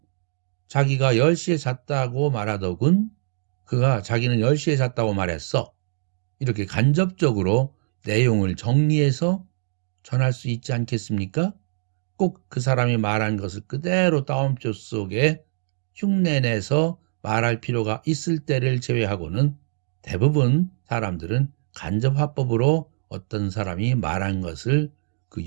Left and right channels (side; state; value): left; silent; digital silence